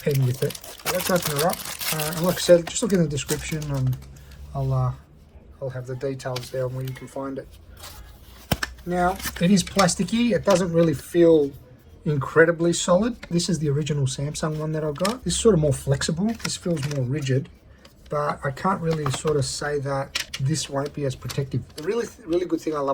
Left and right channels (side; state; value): both; identical; correlation 1.00